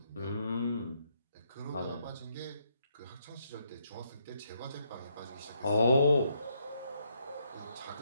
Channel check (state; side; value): inverted; both; correlation -0.75